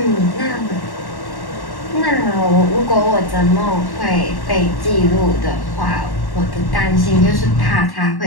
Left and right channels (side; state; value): right; late; 1.1 ms